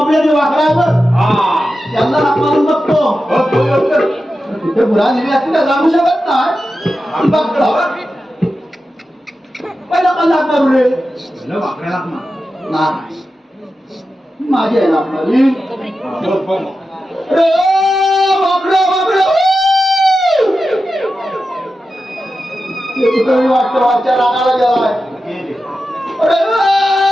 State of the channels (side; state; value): both; normal; correlation 0.91